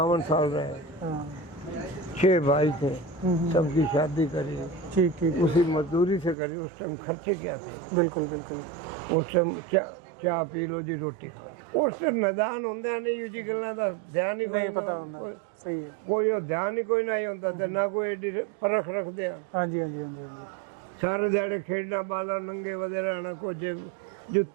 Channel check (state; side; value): drops out; left; at 6.4 s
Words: साल रहे। 6 भाई थे सबकी शादी करी। ठीक ठीक। उसी मजदूरी से करी। उस टाइम खर्चे क्या थे। बिल्कुल बिल्कुल। उस टाइम चाह पी लो जी रोटी खा उस टाइम मैदान होंगे नहीं जी गल्लां दा ध्यान ही कोई सही है कोई ध्यान ही कोई नहीं होता तो ना कोई एडी परख रखते हैं। हाँ जी हाँ जी हाँ जी। सारे दिहाड़े खेडना बाला नंगे वधे रहना कुछ